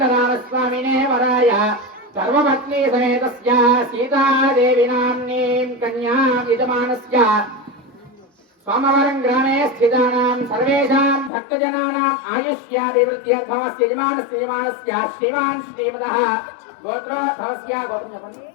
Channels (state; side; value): drops out; right; at 11.3 s